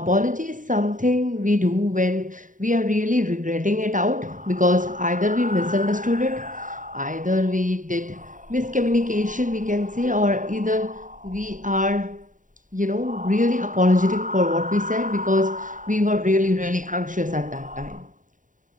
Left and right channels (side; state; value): left; late; 0.38 ms